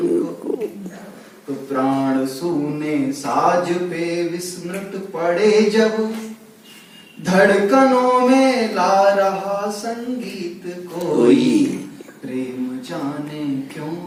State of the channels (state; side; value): identical; both; correlation 1.00